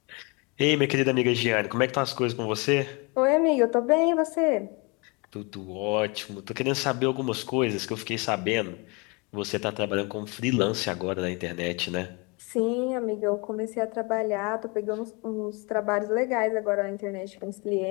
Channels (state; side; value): quieter; right; 29.5 dB